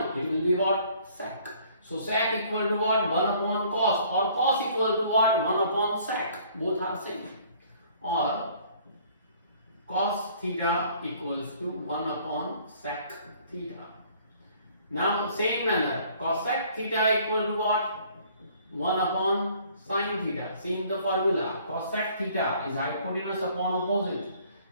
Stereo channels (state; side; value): inverted; both; correlation -0.57